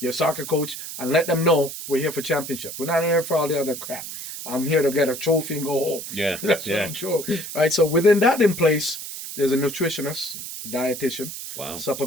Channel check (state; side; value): noise; right; hiss, 9 dB below the sound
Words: soccer coach, and let them know we're here for championship. We're not here for all the other crap. I'm here to get a trophy and go home. Yeah. That's what I'm sure. Right. So within that in place, there's a nutritionist, dietitian, Wow.